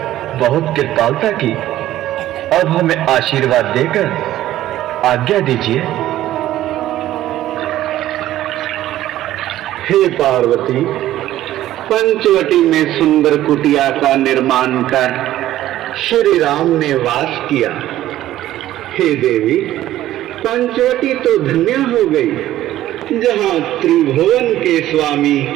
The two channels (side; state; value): left; quieter; 13.8 dB